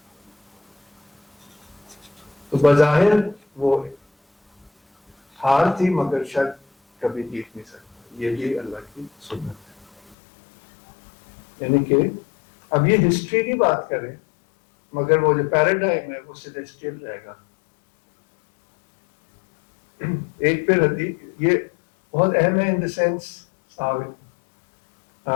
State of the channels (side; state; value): right; drops out; at 10.2 s